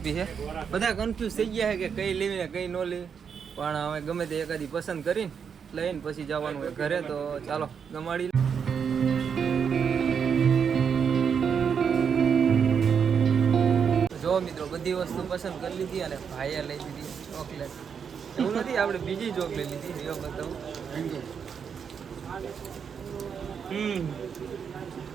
છે. બધા કન્ફ્યુઝ થઈ ગયા છે કે કઈ લેવી ને કઈ ન લેવી, પણ હવે ગમે તે એકાદી પસંદ કરીને લઈને પછી જવાનું હોય ઘરે. તો ચાલો ગમાડી. જો મિત્રો બધી વસ્તુ પસંદ કરી લીધી અને ભાઈએ લઈ દીધી ચોકલેટ. એવું નથી, આપણે બીજી ચોકલેટ લીધી, એ બતાવું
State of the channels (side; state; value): left; quieter; 6.9 dB